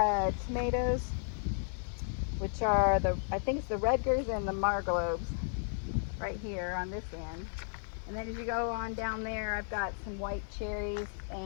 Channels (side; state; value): right; silent; digital silence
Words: tomatoes, which are I think it's the Rutgers and the Marglobes right here on this end. And then as you go on down there, I've got some white cherries